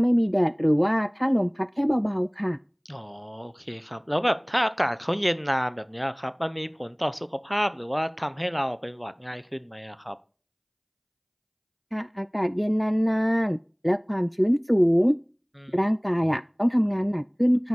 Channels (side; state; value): both; identical; correlation 1.00